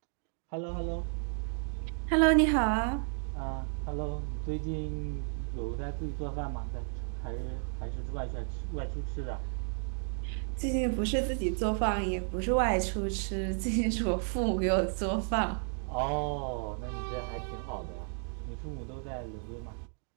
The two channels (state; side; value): silent; left; 56 dB below the other